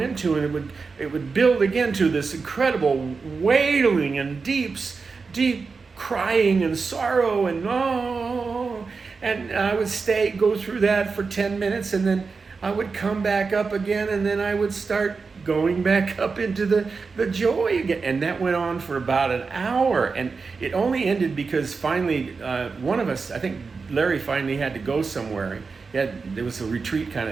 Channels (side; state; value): left; quieter; 4.7 dB